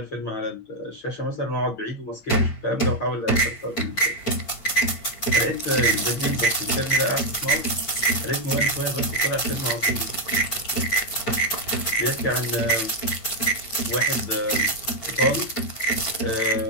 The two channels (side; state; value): right; late; 8.9 ms